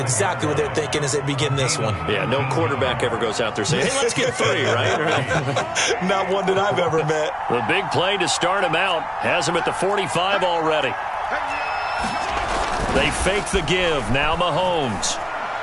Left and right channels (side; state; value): both; identical; correlation 1.00